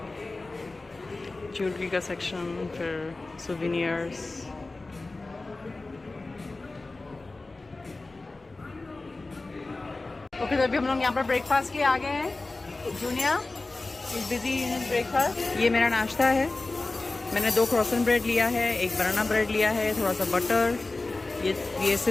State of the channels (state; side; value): quieter; right; 3.3 dB